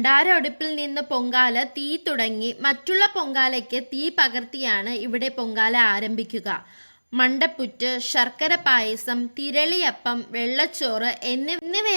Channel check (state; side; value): inverted; both; correlation -1.00